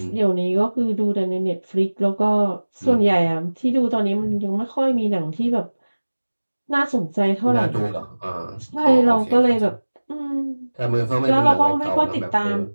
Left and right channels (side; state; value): both; inverted; correlation -1.00